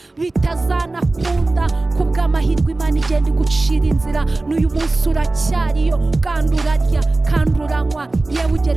bitazanakunda. Kubw'amahirwe Imana igenda igucira inzira, n'uyu munsi uracyariyo, kandi urarya kandi uranywa, yewe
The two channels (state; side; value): quieter; left; 3.1 dB